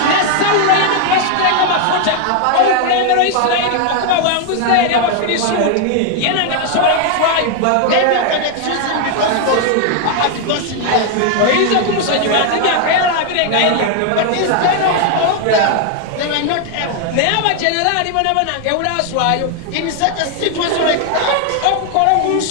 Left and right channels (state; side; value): different; both; correlation 0.00